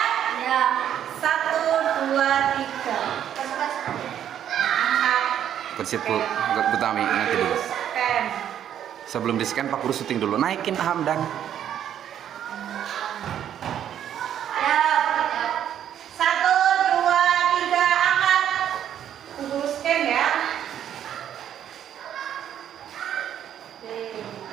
Ya. 1, 2, 3. Angkat. Ke situ, Bu Tami nanti dulu. Scan. Sebelum di scan Pak Guru syuting dulu. Naikin Hamdan. Ya. 1, 2, 3, angkat. Guru scan ya.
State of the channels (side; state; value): left; quieter; 10.0 dB